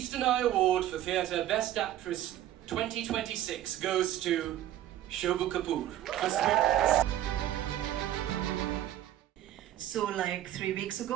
Eye Award for Theatre Best Actress 2026 goes to Shobu Kapoor for Sweetness. So like 3 weeks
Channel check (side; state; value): left; quieter; 12.8 dB